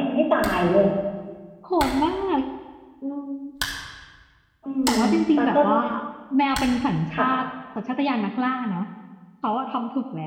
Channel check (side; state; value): both; identical; correlation 1.00